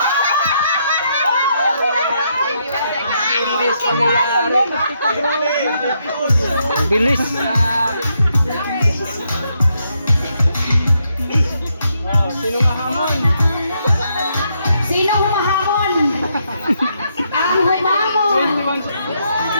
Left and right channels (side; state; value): both; inverted; correlation -0.77